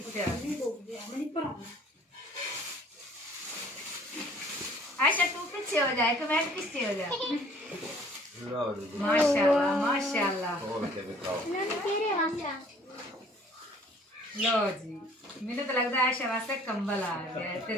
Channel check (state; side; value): normal; both; correlation 0.54